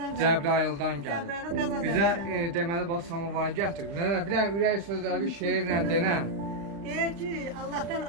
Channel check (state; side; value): late; left; 35 ms